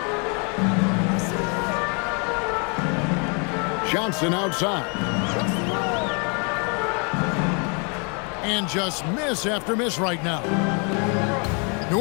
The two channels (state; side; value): quieter; right; 35.8 dB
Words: Johnson outside. And just miss after miss right now. New